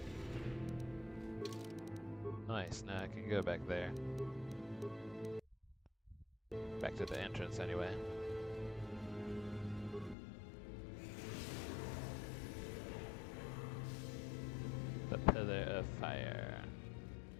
Nice, now I can go back there. Back to the entrance anyway. The Pillar of Fire.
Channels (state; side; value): drops out; right; at 10.2 s